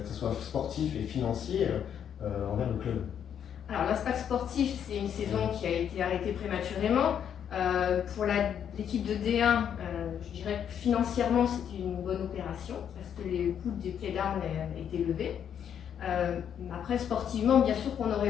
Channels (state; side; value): quieter; right; 8.8 dB